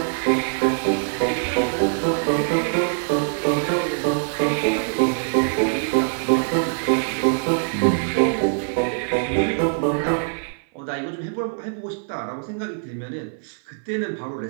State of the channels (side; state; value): left; silent; 57 dB below the other